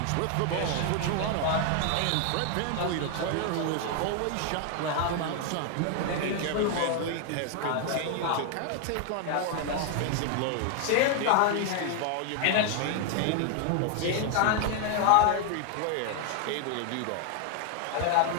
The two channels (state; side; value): different; both; correlation 0.00